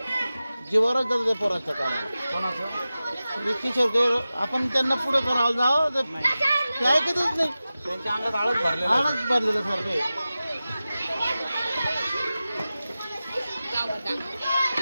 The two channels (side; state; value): both; inverted; correlation -0.95